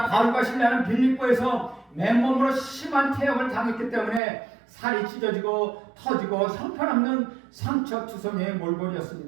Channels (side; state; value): left; drops out; at 4.2 s